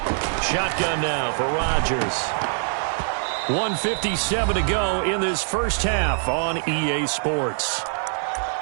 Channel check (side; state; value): left; silent; digital silence